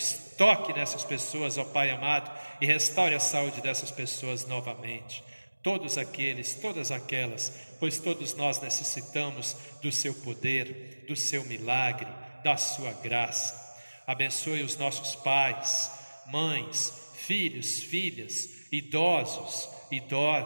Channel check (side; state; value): both; inverted; correlation -1.00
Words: toque nessas pessoas, ó Pai amado, e restaure a saúde dessas pessoas novamente. Todos aqueles, todas aquelas, pois todos nós necessitamos do Seu poder, do Seu milagre, da Sua graça. Abençoe os nossos pais, mães, filhos, filhas, idosos,